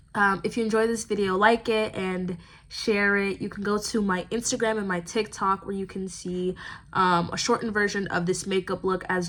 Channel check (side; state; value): both; identical; correlation 1.00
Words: If you enjoyed this video, like it and share it. You can go to my Instagram and my TikTok where you can see a shortened version of this makeup look as